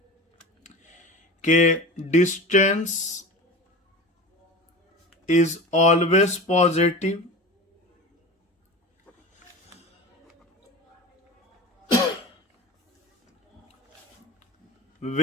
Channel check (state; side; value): normal; both; correlation 0.31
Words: के distance is always positive,